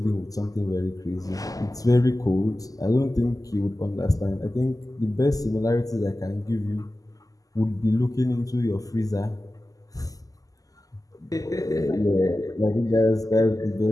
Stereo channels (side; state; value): right; late; 0.17 ms